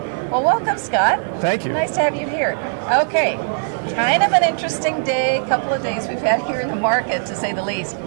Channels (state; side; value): silent; left; digital silence